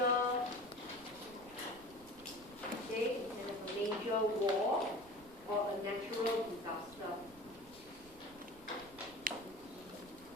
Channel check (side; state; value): right; noise; rumble, 22 dB below the sound